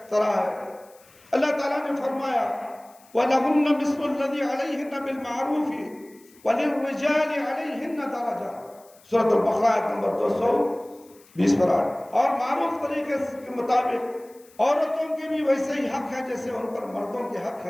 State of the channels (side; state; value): left; noise; hiss, 28 dB below the sound